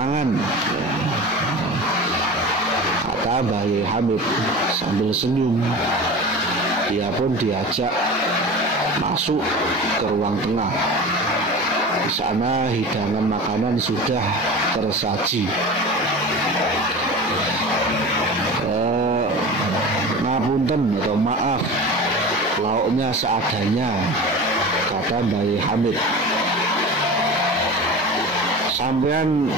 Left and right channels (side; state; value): both; normal; correlation 0.33